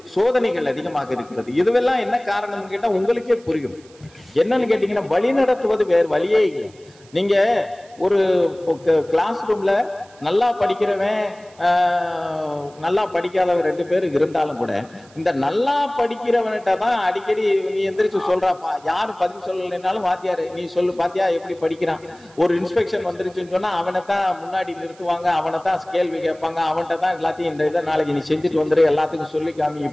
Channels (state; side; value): noise; right; hiss, 27 dB below the sound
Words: சோதனைகள் அதிகமாக இருக்கிறது. இதுவெல்லாம் என்ன காரணம் கேட்டா உங்களுக்கே புரியும். என்னன்னு கேட்டீங்கன்னா வழி நடத்துவது வேறு வழியே இல்லை. நீங்க ஒரு கிளாஸ் ரூம்ல நல்லா படிக்கிறவன் நல்லா படிக்காதவன் 2 பேர் இருந்தாலும் கூட இந்த நல்லா படிக்கிறவன்கிட்ட தான் அடிக்கடி நீ எந்திரிச்சு சொல்றாப்பா. யாரு பதில் சொல்லலைன்னாலும் வாத்தியாரு நீ சொல்லு பாத்தியா எப்படி படிக்கிறான். ஒரு இன்ஸ்பெக்ஷன் வந்துருச்சுன்னு சொன்னா அவனைத்தான் முன்னாடி நிறுத்துவாங்க, அவனைத்தான் கேள்வி கேட்பாங்க, அவன்கிட்ட தான் எல்லாத்தையும் இந்த இதை நாளைக்கு நீ செஞ்சுட்டு வந்துரு எல்லாத்துக்கும் சொல்லி காமி